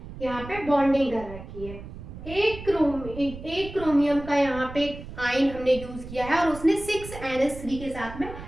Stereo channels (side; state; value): right; noise; rumble, 13 dB below the sound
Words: यहाँ पे बॉन्डिंग कर रखी है। एक क्रोमियम का यहाँ पे आयन हमने यूज किया है और उसने 6NH3 के साथ में